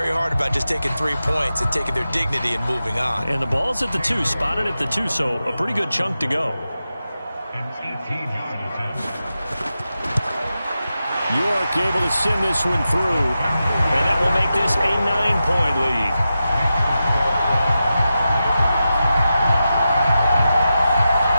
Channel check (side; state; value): both; inverted; correlation -0.91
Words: hard about just taking 3 points and taking their dignity and moving on. And the ball's at the 2, spotted at the 2, so a pretty good chunk to go. York able to send this one through, and that will make this a 9-point lead.